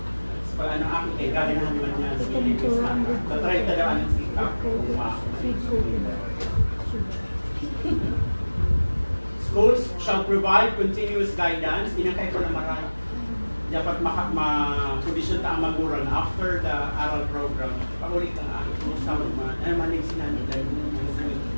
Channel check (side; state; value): both; inverted; correlation -1.00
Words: Pag ano akin, galing naman niya sa Pilipinas na. Tatry tadaan ng sikap. Schools shall provide continuous guidance. Inakay ko na marami. Dapat ma-condition ta ang magulang after the aral program. Pag-ulit ang akin, kumusta mo naman. Ano man yung sinanod dahil